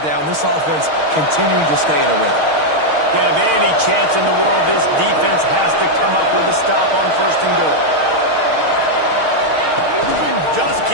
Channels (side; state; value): left; late; 6.5 ms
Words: down. This offense continuing to stay in a rhythm. Have any chance in the world, this defense has to come up with a stop on first and goal. Just